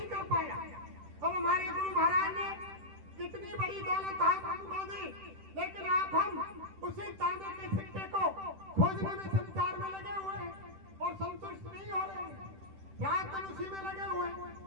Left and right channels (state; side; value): late; left; 10 ms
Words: कर पाया। अब हमारे गुरु महाराज ने कितनी बड़ी दौलत आप हमको दी, लेकिन आप हम उसी तांबे के सिक्के को खोजने में संसार में लगे हुए हैं और संतुष्ट नहीं हो रहे हैं। रात दिन उसी में लगे हुए हैं।